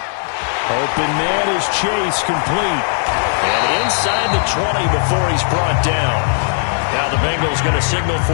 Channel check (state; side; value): silent; right; digital silence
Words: Open man is Chase, complete. And inside the 20 before he's brought down. Now the Bengals going to signal